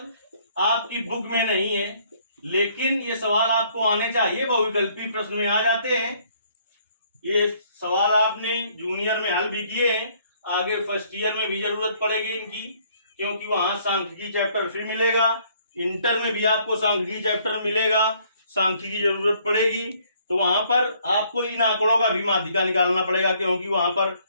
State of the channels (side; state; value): both; inverted; correlation -0.63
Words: आपकी बुक में नहीं है, लेकिन ये सवाल आपको आने चाहिए, बहुविकल्पी प्रश्न में आ जाते हैं। ये सवाल आपने जूनियर में हल भी किए हैं, आगे फर्स्ट ईयर में भी जरूरत पड़ेगी इनकी, क्योंकि वहां सांख्यिकी चैप्टर फिर मिलेगा। इंटर में भी आपको सांख्यिकी चैप्टर मिलेगा, सांख्यिकी की जरूरत पड़ेगी। तो वहां पर आपको इन आंकड़ों का भी माध्यिका निकालना पड़ेगा, क्योंकि वहां पर